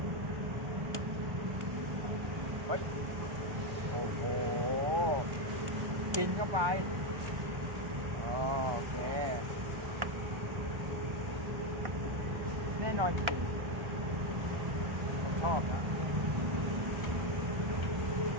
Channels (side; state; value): left; late; 1.2 ms